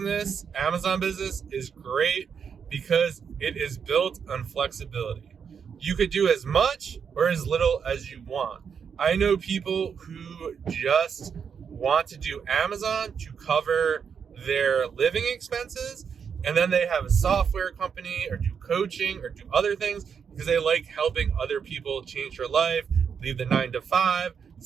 Amazon business, is great because it is built on flexibility. You could do as much or as little as you want. I know people who just want to do Amazon to cover their living expenses, and then they have a software company or do coaching or do other things because they like helping other people change their life, leave the 9-to-5,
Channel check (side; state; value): left; quieter; 6.8 dB